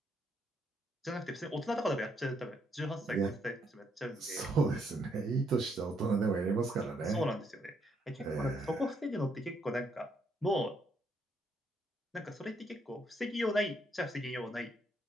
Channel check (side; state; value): both; normal; correlation 0.73